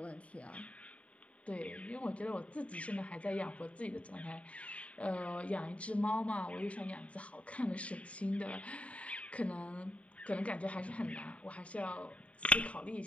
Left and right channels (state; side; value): late; right; 0.065 ms